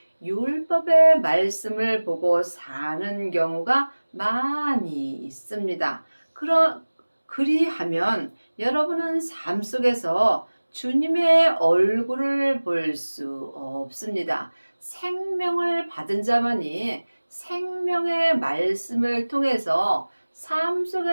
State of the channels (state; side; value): inverted; both; correlation -1.00